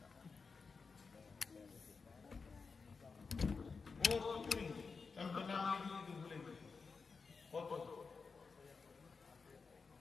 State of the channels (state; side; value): quieter; right; 4.8 dB